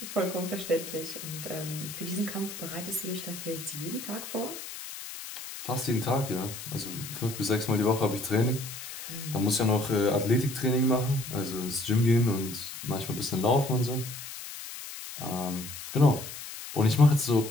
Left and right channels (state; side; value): noise; left; hiss, 10 dB below the sound